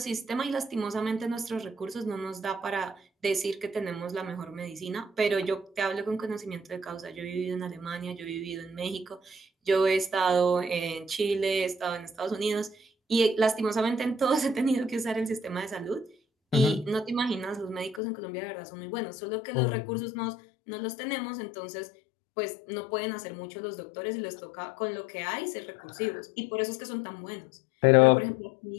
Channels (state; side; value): drops out; right; at 18.0 s